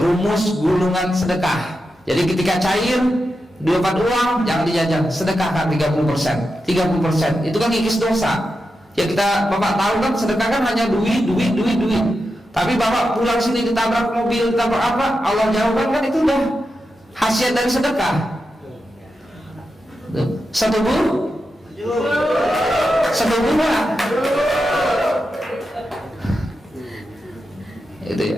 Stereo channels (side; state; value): both; normal; correlation 0.89